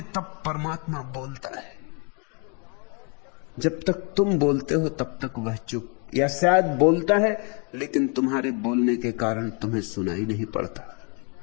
तब परमात्मा बोलता है। जब तक तुम बोलते हो तब तक वह चुप, या शायद बोलता है लेकिन तुम्हारे बोलने के कारण तुम्हें सुनाई नहीं पड़ता।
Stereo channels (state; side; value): quieter; right; 36.0 dB